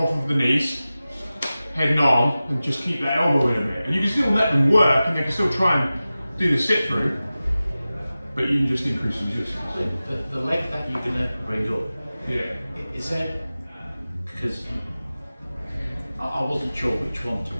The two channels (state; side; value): inverted; both; correlation -0.96